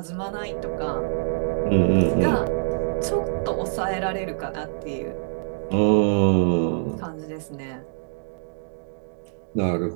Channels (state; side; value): silent; left; digital silence